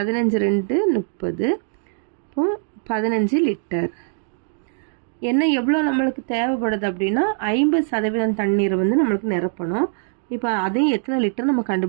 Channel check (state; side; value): silent; left; digital silence